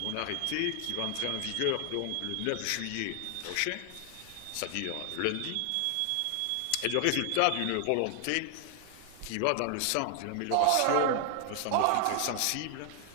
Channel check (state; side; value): different; both; correlation 0.00